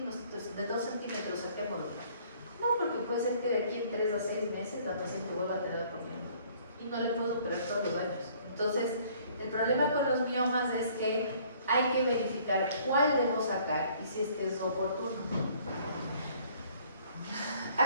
centímetros, saquémoslo. No, porque puede ser que de aquí en 3 a 6 meses la paciente vuelva a tener otro mioma y no le puedo operar todos los años. Entonces, el problema con los miomas es que hay que verificar cuál debo sacar y si es que es oportuno.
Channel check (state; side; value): inverted; both; correlation -0.58